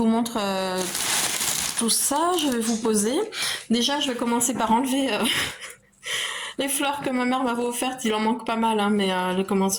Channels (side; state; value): both; identical; correlation 1.00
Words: montre tout ça. Je vais vous poser. Déjà, je vais commencer par enlever les fleurs que ma mère m'avait offertes. Il en manque pas mal, hein, mais elles